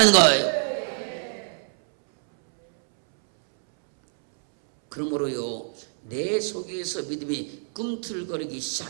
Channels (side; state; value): left; silent; 62 dB below the other